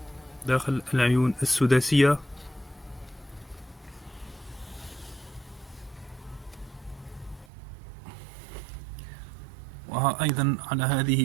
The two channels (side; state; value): left; drops out; at 7.5 s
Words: داخل العيون السداسية. وها أيضا على هذه